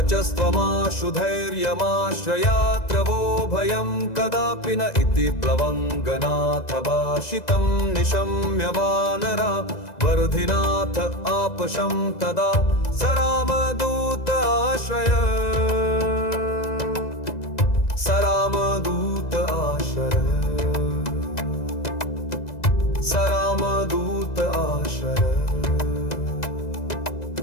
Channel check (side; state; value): right; late; 2.0 ms